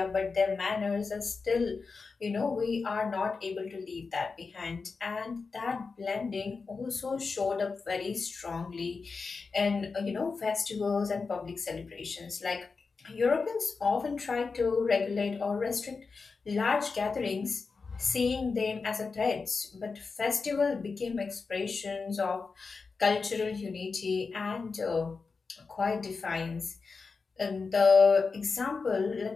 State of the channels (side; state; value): right; quieter; 4.6 dB